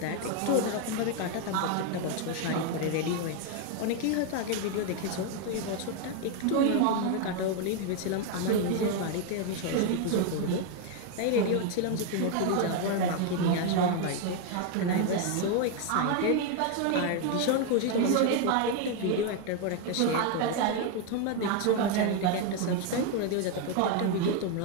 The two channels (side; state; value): both; different; correlation 0.01